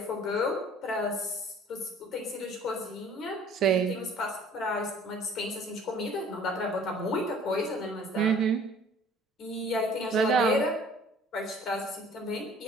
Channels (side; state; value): both; normal; correlation 0.52